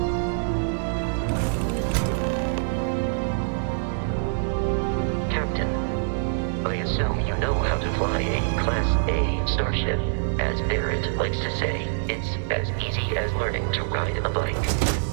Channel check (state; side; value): silent; left; digital silence